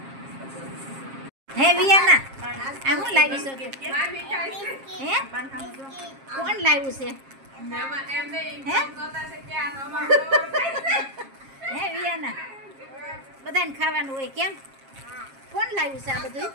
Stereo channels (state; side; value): late; left; 7.4 ms